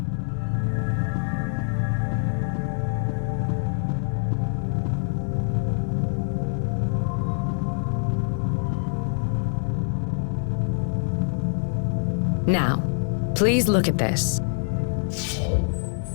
Now, please look at this.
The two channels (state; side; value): silent; right; 62 dB below the other